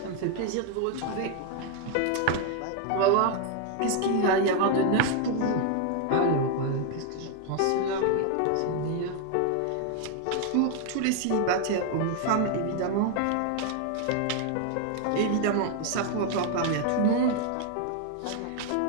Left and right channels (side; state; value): both; different; correlation 0.01